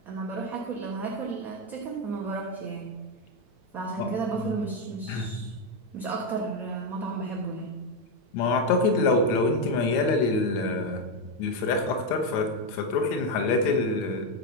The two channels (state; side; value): late; right; 9.0 ms